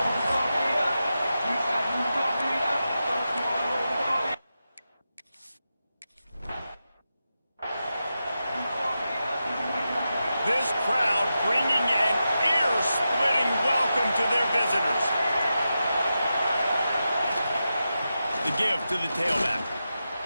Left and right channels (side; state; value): both; inverted; correlation -0.90